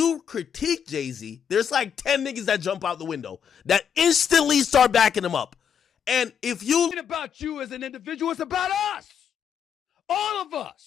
critique Jay-Z, there's like 10 niggas that jump out the window that instantly start backing him up. And if you... It's about you as an individual, it's about us. All of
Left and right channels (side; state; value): right; quieter; 7.8 dB